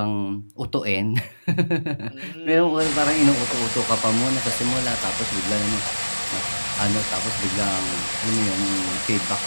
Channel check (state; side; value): inverted; both; correlation -1.00